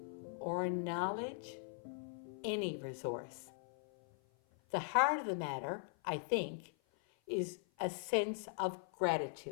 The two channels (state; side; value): silent; right; 51 dB below the other